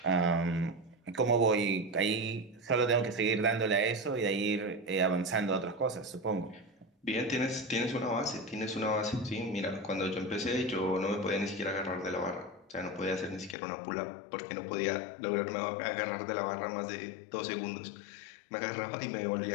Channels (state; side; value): drops out; right; at 13.6 s